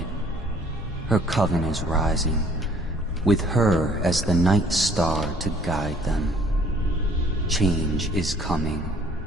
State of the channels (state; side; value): normal; both; correlation 0.58